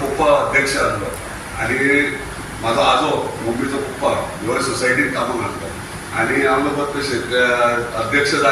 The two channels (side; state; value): both; identical; correlation 1.00